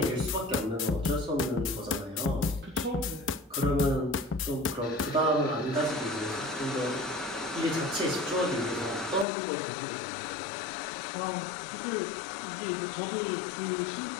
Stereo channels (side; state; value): right; drops out; at 9.2 s